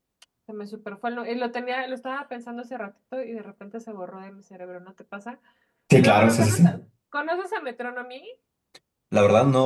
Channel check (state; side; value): identical; both; correlation 1.00